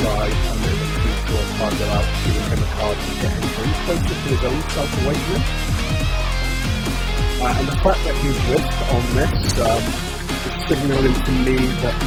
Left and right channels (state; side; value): identical; both; correlation 1.00